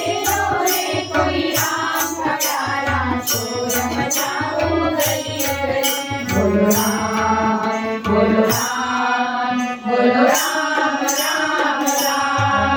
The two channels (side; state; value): both; identical; correlation 1.00